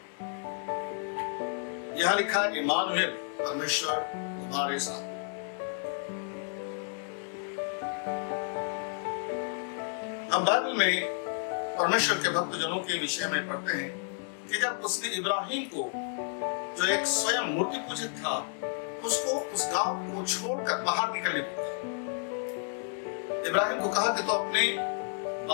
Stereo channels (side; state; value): right; silent; 57 dB below the other